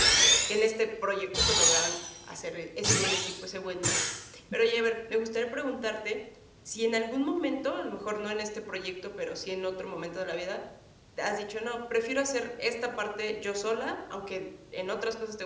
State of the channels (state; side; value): identical; both; correlation 1.00